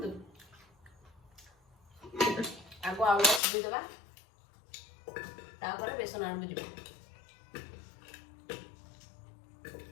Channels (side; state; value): right; drops out; at 3.4 s